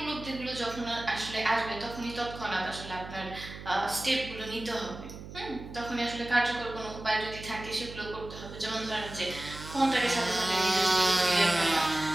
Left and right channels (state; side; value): noise; right; hum, 13 dB below the sound